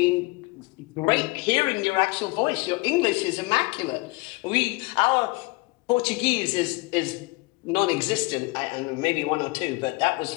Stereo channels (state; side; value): quieter; right; 24.6 dB